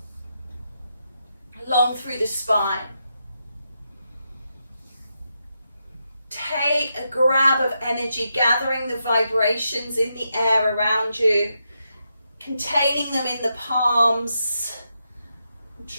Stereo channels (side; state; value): both; inverted; correlation -0.84